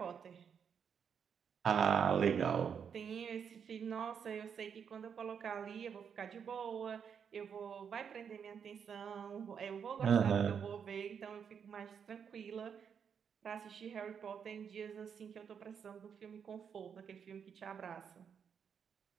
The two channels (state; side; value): quieter; left; 7.2 dB